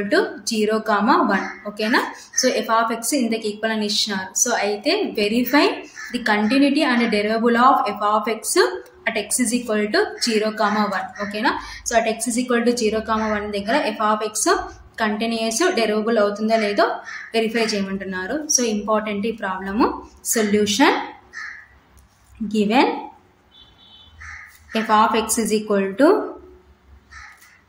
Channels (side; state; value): both; identical; correlation 1.00